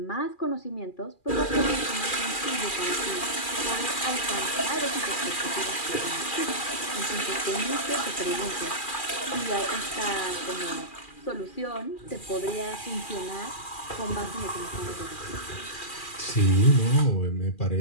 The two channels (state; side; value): late; right; 2.4 ms